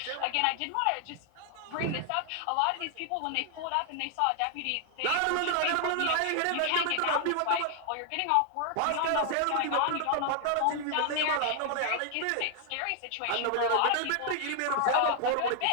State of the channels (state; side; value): different; both; correlation 0.00